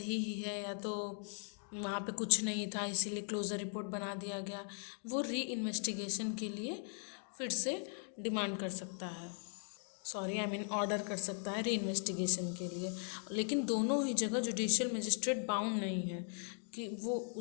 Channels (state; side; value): silent; right; 52 dB below the other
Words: ही है, या तो वहाँ पे कुछ नहीं था इसीलिए क्लोजर रिपोर्ट बना दिया गया। वो री इन्वेस्टिगेशन के लिए फिर से डिमांड कर सकता है, सॉरी आई मीन ऑर्डर कर सकता है री इन्वेस्टिगेशन के लिए। लेकिन दोनों ही जगह जुडिशियल मजिस्ट्रेट बाउंड नहीं है कि वो